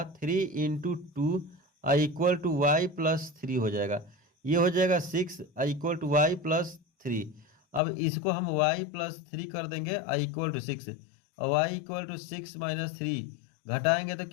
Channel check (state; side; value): drops out; right; at 7.8 s